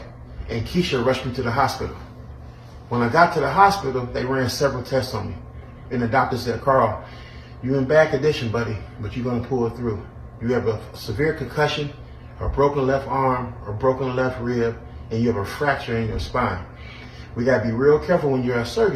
and Keisha rushed me to the hospital. When I got to the hospital, they ran several tests on me. And the doctor said, Carl, you're in bad condition, buddy, but you're going to pull it through. You have a severe concussion, a broken left arm, a broken left rib, and you have a fracture in your spine. We got to be real careful when you're at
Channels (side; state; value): both; identical; correlation 1.00